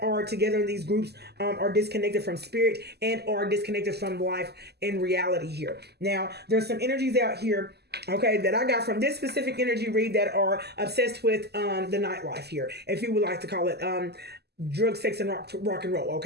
are together in these groups are disconnected from spirit and are disconnected from life and reality here. Now, there's some energies out here, okay, that I got from this specific energy read that are obsessed with the nightlife here, if you would like to call it drug, sex, and rock and roll.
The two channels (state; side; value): late; left; 0.47 ms